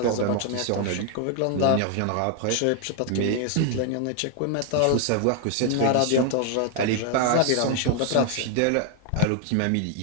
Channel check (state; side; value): different; both; correlation 0.00